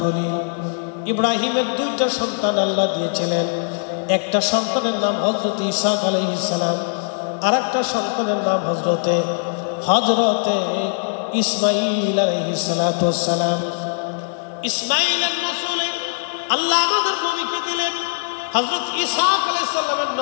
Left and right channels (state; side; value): silent; right; digital silence